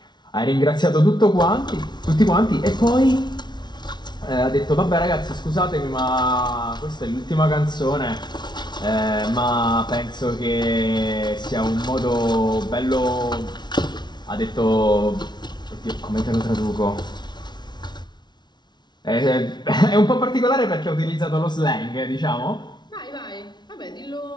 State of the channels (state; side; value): late; right; 0.20 ms